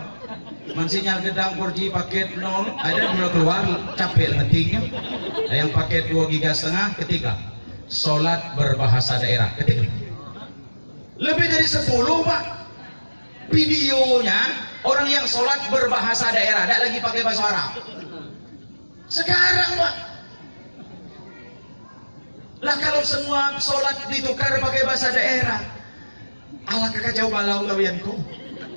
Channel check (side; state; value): both; inverted; correlation -1.00